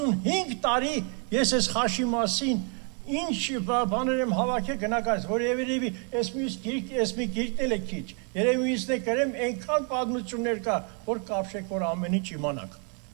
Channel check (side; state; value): left; quieter; 38.4 dB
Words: տարի ես այս խաշի մասին ինչ բաներ եմ հավաքել գնահատած, որ երևի այս մի գիրքն է քիչ։ Երևի ինձն է գրեմ այնքան պատմություններ կա, որ կապշեք, որ ամեն ինչ իմանաք։